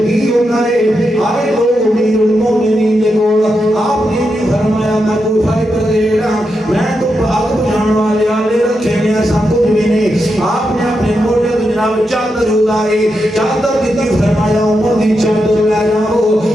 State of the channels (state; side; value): normal; both; correlation 0.86